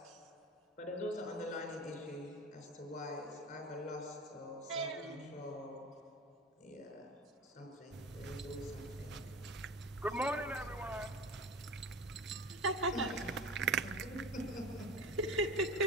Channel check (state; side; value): normal; both; correlation 0.34